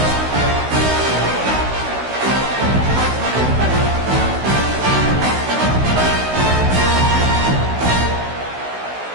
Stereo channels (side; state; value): left; late; 16 ms